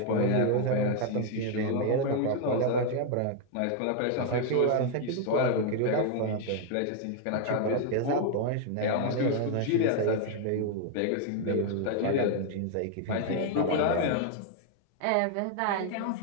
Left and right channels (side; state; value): both; different; correlation 0.00